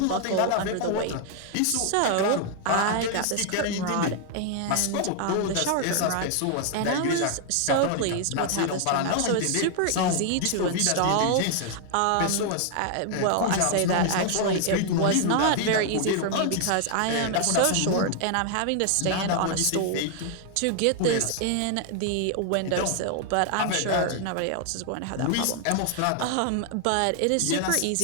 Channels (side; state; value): both; different; correlation 0.00